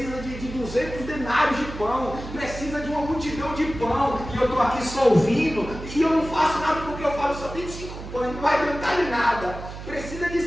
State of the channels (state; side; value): noise; right; hum, 11 dB below the sound